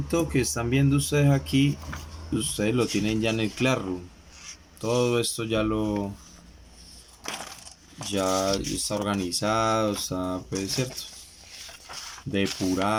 que están viendo ustedes aquí, ustedes lo tienen ya en el Classroom. Todo esto ya está organizado, está, pues, cierto,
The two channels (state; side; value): identical; both; correlation 1.00